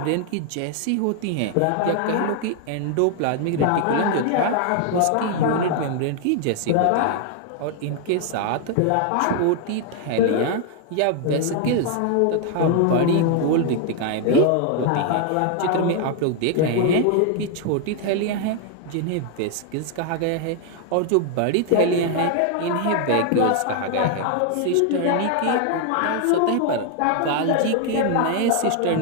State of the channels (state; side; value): different; both; correlation 0.00